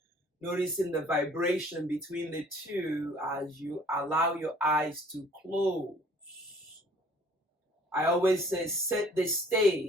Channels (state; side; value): normal; both; correlation 0.54